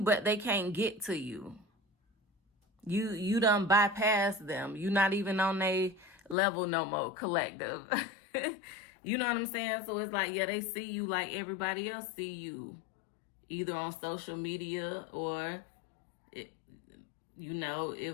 they can't get to you. You done bypass them. You're not even on their level no more, collective. You know what I'm saying? So it's like, yeah, they see you like everybody else see you. Either on social media or, you know,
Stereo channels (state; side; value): drops out; right; at 6.4 s